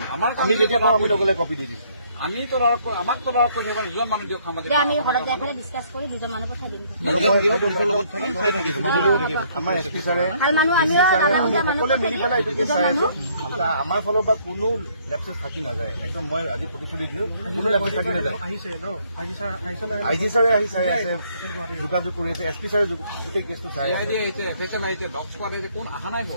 আমাৰ আমি যেতিয়া পাওঁ আমি লগে লগে কপি দি দিম। আমি আমাক দুজন মানুহ দিয়ক সামাজিক আমি ঘৰত যাই পেলাই ডিছকাছ কৰি দুজন মানুহ পঠাই দিম। আমাৰ এছপি ছাৰে সকলোৱে মিলি পেলাই এইটোকে চাই আছো। আমাৰ ফালৰ পৰা কোনো লেপচেছ থাকি নাযায়। একদম মই আজি প্ৰতিশ্ৰুতি দিলো কোনো লেপচেছ থাকি নাযায়। আই জি ছাৰে আহি চাই আছে, যোগাযোগ কৰি আছে। এছ পি ছাৰে গোটেই কেছটো চাই আছে।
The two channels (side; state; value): both; inverted; correlation -0.65